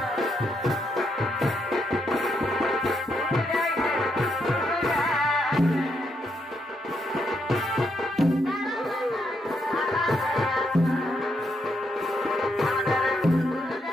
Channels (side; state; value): both; normal; correlation 0.78